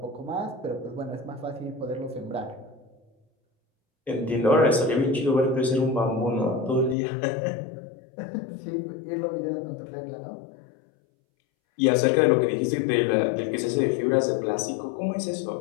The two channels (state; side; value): drops out; right; at 7.0 s